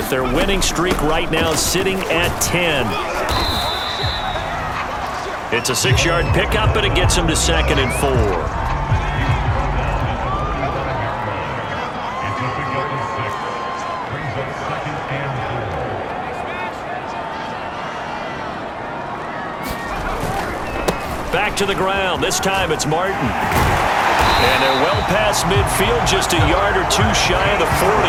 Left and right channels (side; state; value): both; identical; correlation 1.00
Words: their winning streak right now sitting at 10. It's a 6-yard pickup, and it gets them to 2nd and 4. Back to the ground. This time it's Martin. And they're well past midfield, just a yard or two shy of the 40.